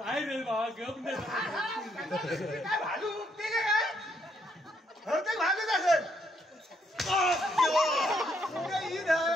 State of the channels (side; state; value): both; normal; correlation 0.73